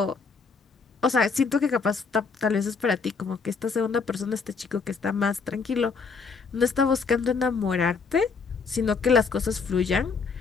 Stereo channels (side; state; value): right; quieter; 5.0 dB